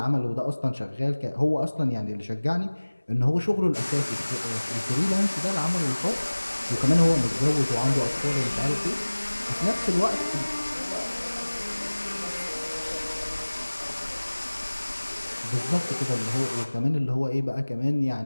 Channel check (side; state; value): both; inverted; correlation -1.00